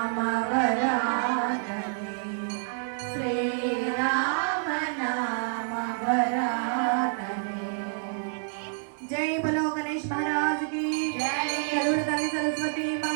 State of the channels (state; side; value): silent; left; digital silence